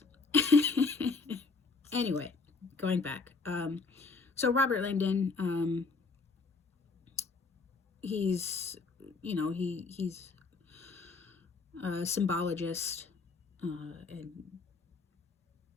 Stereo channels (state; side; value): quieter; right; 4.2 dB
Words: Anyway, going back. So Robert Langdon, he's a symbologist, and